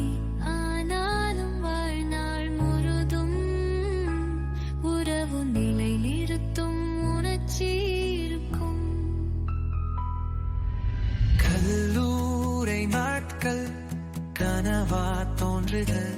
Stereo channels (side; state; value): both; identical; correlation 1.00